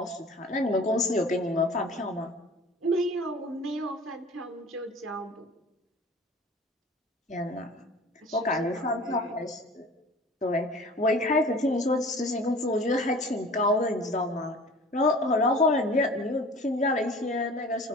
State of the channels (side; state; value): both; normal; correlation 0.43